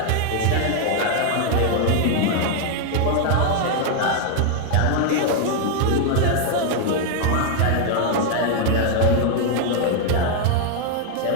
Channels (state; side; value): different; both; correlation 0.00